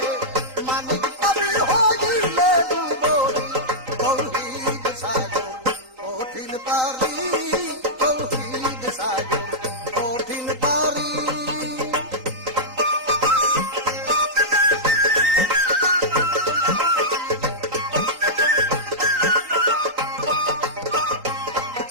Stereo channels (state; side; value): late; left; 3.9 ms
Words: মালিক পাবি, হজিলে ডুবরি তৌহিদ সাগর কঠিন পারি, তৌহিদ সাগর কঠিন পারি।